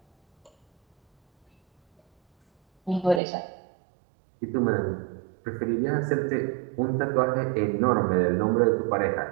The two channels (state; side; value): drops out; left; at 3.2 s